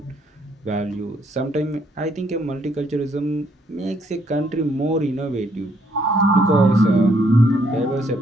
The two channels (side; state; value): both; normal; correlation 0.70